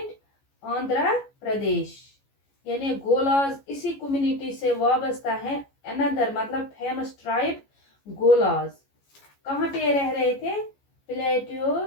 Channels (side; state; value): right; late; 14 ms